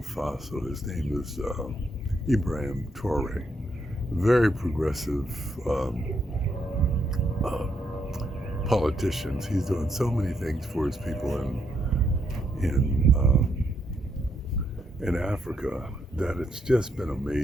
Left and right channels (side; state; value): both; normal; correlation 0.77